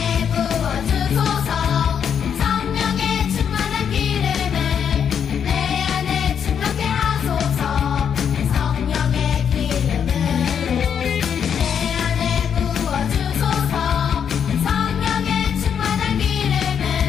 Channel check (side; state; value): right; quieter; 7.9 dB